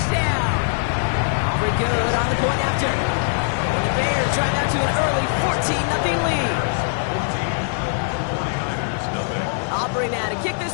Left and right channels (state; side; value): silent; right; 62 dB below the other